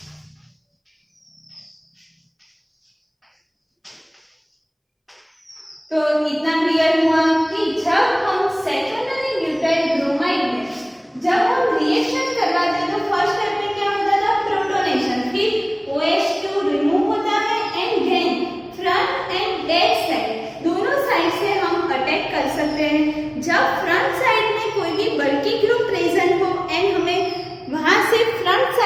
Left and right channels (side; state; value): both; identical; correlation 1.00